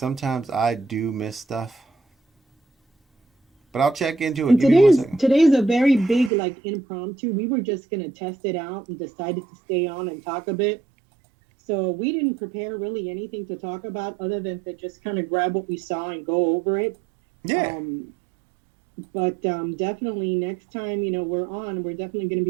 I do miss stuff. But I'll check into it. And today's a very big, like, impromptu. We were just going to test it out and decided to stay on and talk a bit. So we didn't prepare really anything to talk about other than to just kind of grab what we saw and go over it. Yeah. But definitely next time, you know, we're definitely going to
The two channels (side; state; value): left; drops out; at 6.3 s